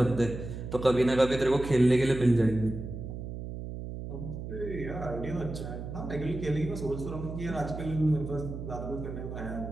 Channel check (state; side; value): noise; right; hum, 8 dB below the sound